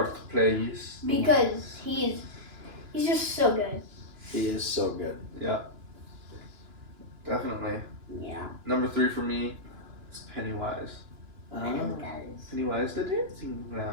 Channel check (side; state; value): left; late; 2.9 ms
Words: plays. because he's just so good. He is so good. Yeah. Definitely. Yeah. Number 3 for me is Pennywise. I know what that is. Pennywise the dancing